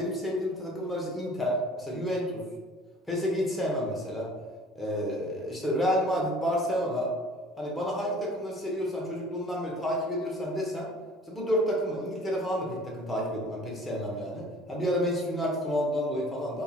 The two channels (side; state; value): both; normal; correlation 0.49